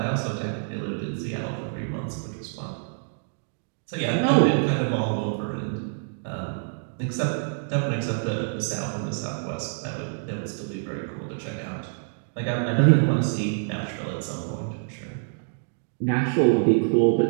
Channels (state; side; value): silent; left; digital silence